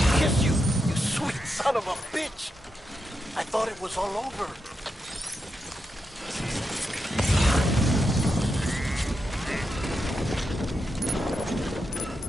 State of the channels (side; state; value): both; normal; correlation 0.86